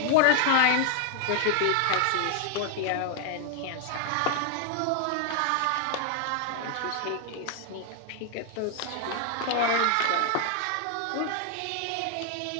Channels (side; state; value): both; different; correlation 0.01